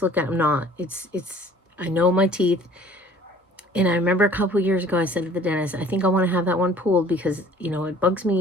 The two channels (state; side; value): normal; both; correlation 0.51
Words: look at. I'm not. I know my teeth. And I remember a couple of years ago, I said to the dentist, "I think I want to have that one pulled, because, it bugs